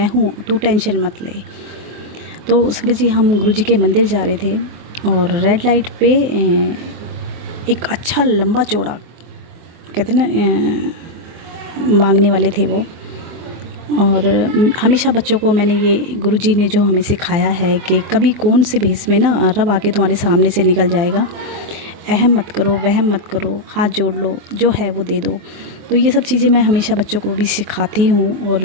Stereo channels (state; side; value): late; left; 24 ms